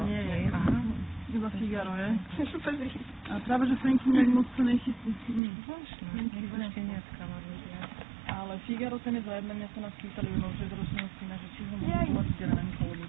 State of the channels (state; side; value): drops out; left; at 5.4 s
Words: nie je. Aha. Iba Figaro je. A práve, že Franky nejak moc sa nechystí. Zvláštne, ešte neskama ľudia. Ale Figaro ten je zajednaný, sa nás pýtali u novšej zročného syna, že či ho môžu volať Gránko, lebo